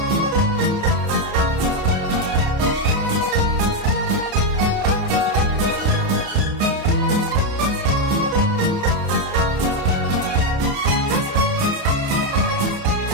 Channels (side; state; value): left; late; 30 ms